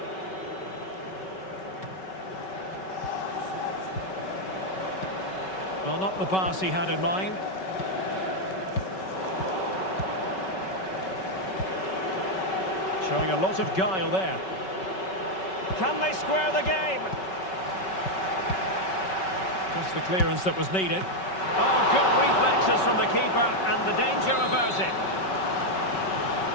Well, not the pass he had in mind. Showing a lot of guile there. Can they square the game? Just the clearance that was needed. Oh, good reflexes from the keeper, and the danger averted.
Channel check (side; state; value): right; late; 5.3 ms